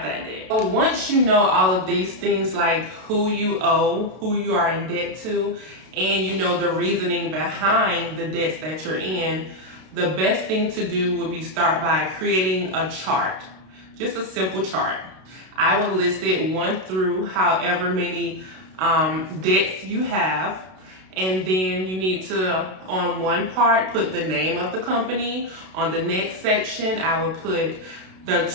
that debt. So once you know all of these things, like who you owe, who you are in debt to, and you know the reasoning behind the debts that you're in, the best thing to do would be start by creating a chart, just a simple chart. I would list it 1 through however many debts you have, and then you need to, on one part, put the name of the company. On the next section, I would put the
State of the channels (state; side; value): late; left; 32 ms